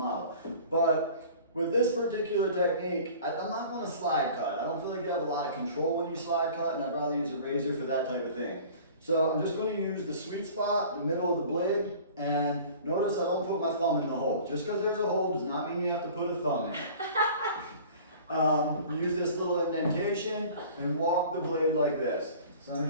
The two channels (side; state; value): both; inverted; correlation -0.44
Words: But with this particular technique, I'm not going to slide cut. I don't feel like you have a lot of control when you slide cut, and I'd rather use a razor for that type of thing. So I'm just going to use the sweet spot, the middle of the blade, and notice I don't put my thumb in the hole. Just because there's a hole does not mean you have to put a thumb in. Use this little indentation and walk the blade like this. So I'm